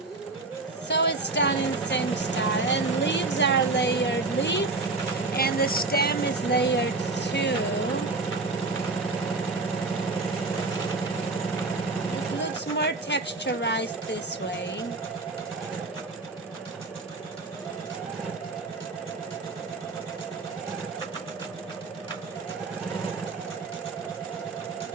So it's done in the same style, and leaves are layered leaf and the stem is layered 2. It looks more texturized this way.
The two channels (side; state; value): left; quieter; 3.5 dB